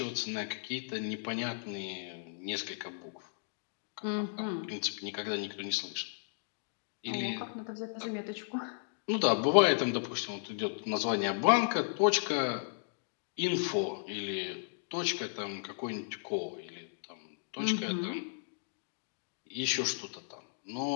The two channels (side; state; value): right; silent; digital silence